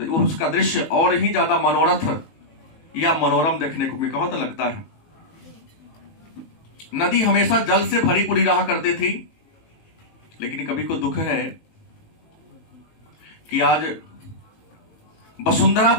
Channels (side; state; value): right; late; 19 ms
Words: उसका दृश्य और ही ज्यादा मनोरथ या मनोरम देखने को बहुत लगता है। नदी हमेशा जल से भरी पूरी रहा करती थी, लेकिन कभी को दुख है कि आज वसुंधरा